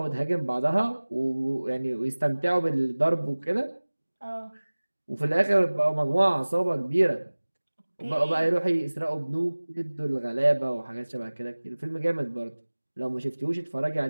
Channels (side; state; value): both; inverted; correlation -1.00